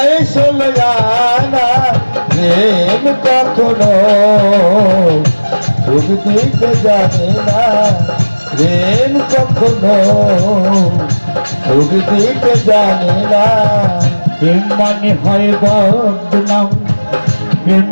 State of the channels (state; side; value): inverted; both; correlation -1.00